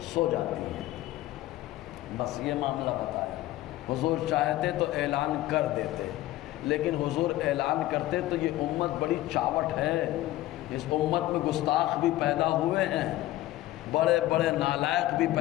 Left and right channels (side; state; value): right; quieter; 16.0 dB